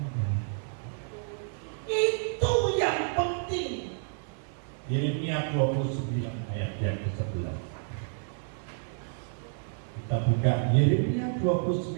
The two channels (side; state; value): left; silent; 58 dB below the other